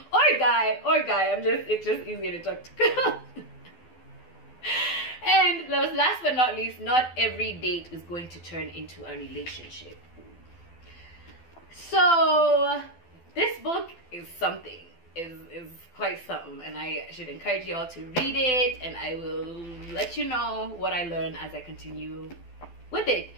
or guy. It's just easier to talk to girls. And last but not least, not every date is going to turn into a relationship. So this book is something. Is quite something, and I should encourage you all to read it, and I will let you know what I learn as I continue with it.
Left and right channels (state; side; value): late; right; 12 ms